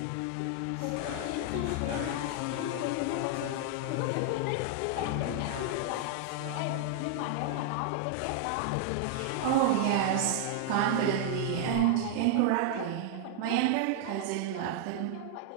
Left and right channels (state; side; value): different; both; correlation 0.00